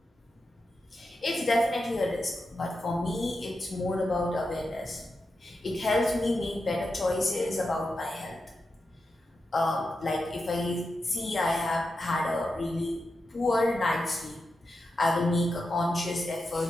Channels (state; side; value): normal; both; correlation 0.89